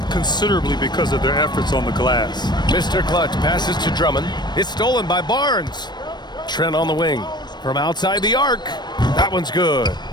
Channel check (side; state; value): right; late; 0.21 ms